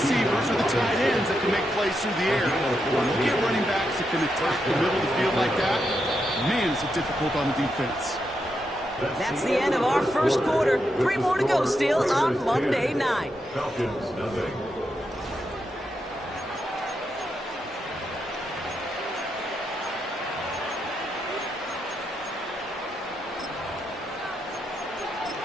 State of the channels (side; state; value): both; normal; correlation 0.83